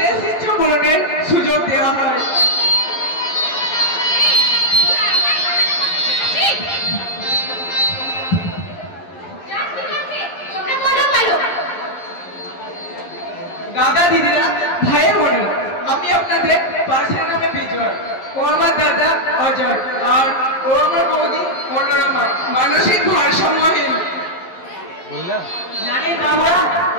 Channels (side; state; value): right; late; 11 ms